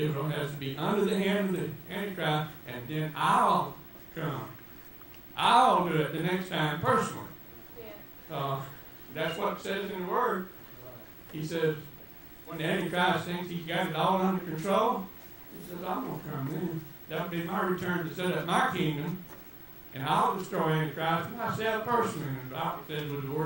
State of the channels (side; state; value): right; noise; rumble, 22 dB below the sound